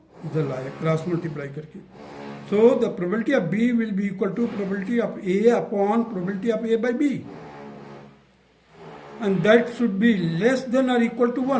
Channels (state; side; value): identical; both; correlation 1.00